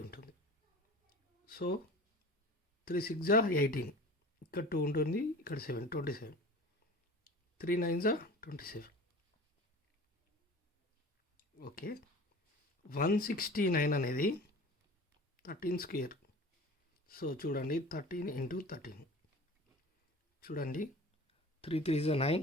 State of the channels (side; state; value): both; normal; correlation 0.39